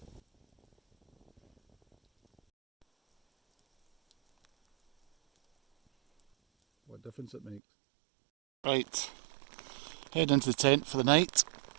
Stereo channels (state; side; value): drops out; left; at 7.6 s